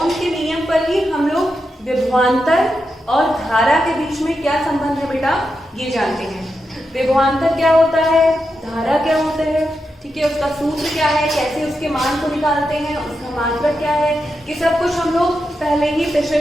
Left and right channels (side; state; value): both; normal; correlation 0.87